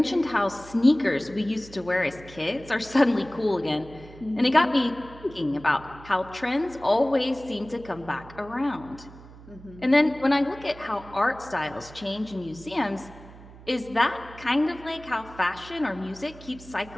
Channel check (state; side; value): noise; right; hum, 19 dB below the sound